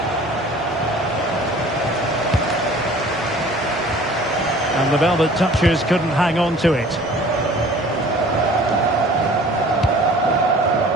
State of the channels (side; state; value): both; normal; correlation 0.48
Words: And the velvet touchers couldn't hang on to it.